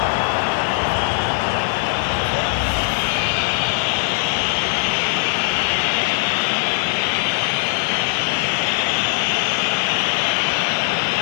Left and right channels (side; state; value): right; silent; digital silence